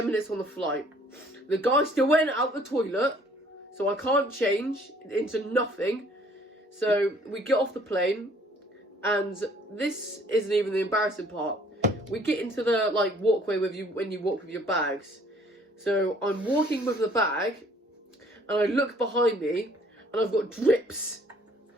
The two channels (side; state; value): both; normal; correlation 0.58